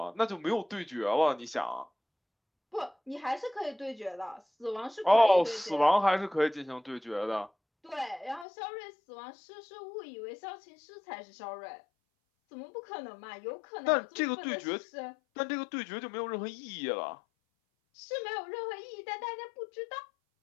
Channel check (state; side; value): drops out; right; at 8.5 s